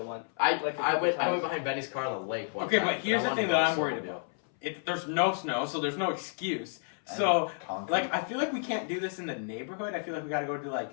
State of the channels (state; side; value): silent; right; 57 dB below the other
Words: one. I Like a I couple went times. behind Benny's car on the lake one Okay, time, but here's I the wanted thing to that go I'm worried snowmobile. about. There's no snow, so there's no excuse. And So, concrete. like, I feel like we can't do this in the neighborhood. I feel like we gotta go to like,